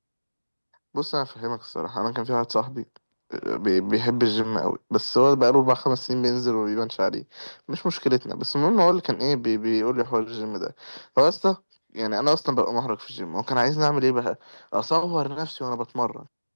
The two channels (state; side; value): inverted; both; correlation -1.00